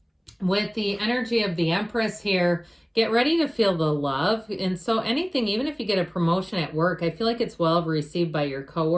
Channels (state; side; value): identical; both; correlation 1.00